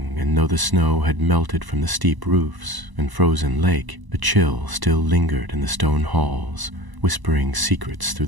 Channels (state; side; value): late; left; 1.0 ms